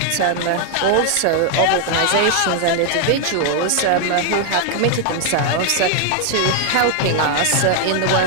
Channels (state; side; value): different; both; correlation 0.00